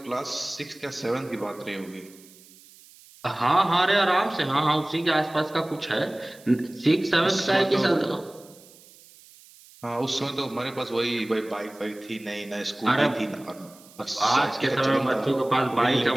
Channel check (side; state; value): right; noise; hiss, 24 dB below the sound